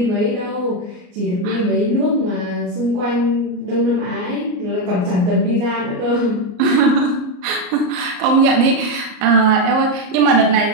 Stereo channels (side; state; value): left; late; 33 ms